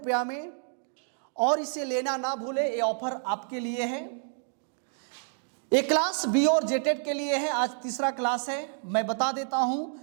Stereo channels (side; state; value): left; silent; 59 dB below the other